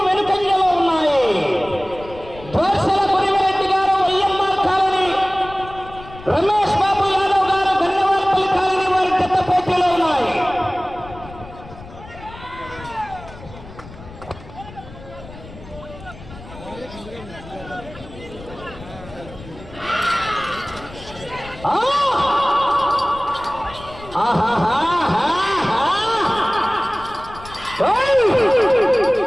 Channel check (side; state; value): left; noise; rumble, 17 dB below the sound